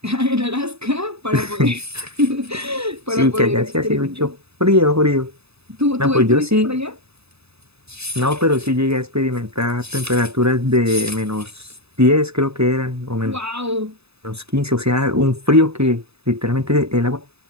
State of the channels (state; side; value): late; left; 0.79 ms